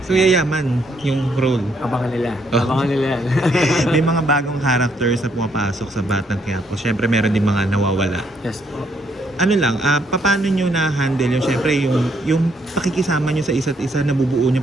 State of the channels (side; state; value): both; normal; correlation 0.71